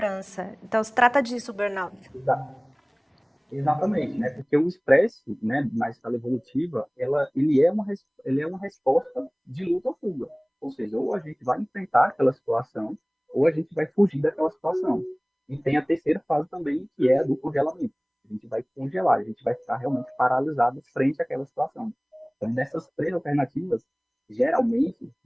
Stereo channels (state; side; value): identical; both; correlation 1.00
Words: Então, se trata disso, o burnout. Exatamente, né? Porque o estresse, né, na escala evolutiva, ele é uma resposta de luta ou fuga. Ou seja, ou a gente vai enfrentar aquela situação, ou a gente vai fugir daquela situação. E tem a terceira fase também, que é a do congelamento. A gente vai congelar, a gente vai ficar realmente paralisado frente àquela situação. Então, dessas três alternativas, geralmente,